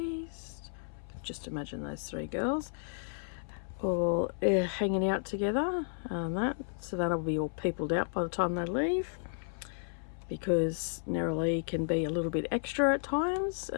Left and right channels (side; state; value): right; silent; 56 dB below the other